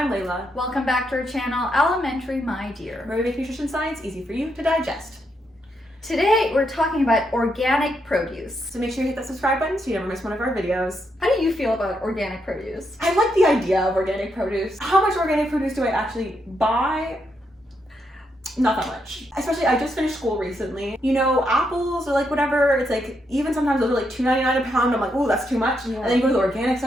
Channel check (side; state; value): both; normal; correlation 0.80